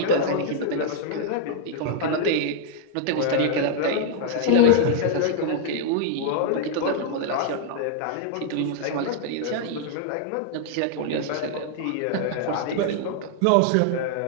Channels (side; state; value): both; different; correlation -0.01